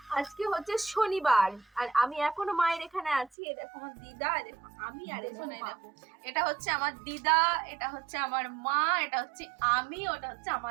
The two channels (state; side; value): drops out; left; at 3.3 s